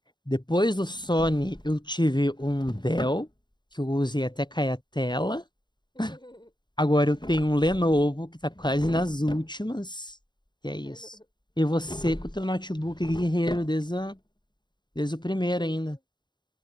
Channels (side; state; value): right; late; 0.21 ms